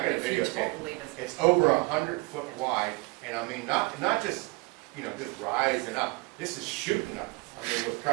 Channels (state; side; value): quieter; left; 26.6 dB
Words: got it if you don't videotaped. believe us. It's over 100 foot wide, and I mean, not just, you know, just rising up. This is shooting up, I mean, with